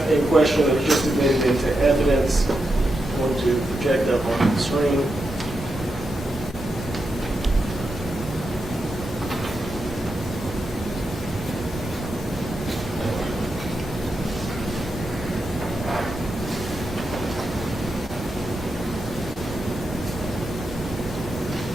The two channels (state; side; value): normal; both; correlation 0.86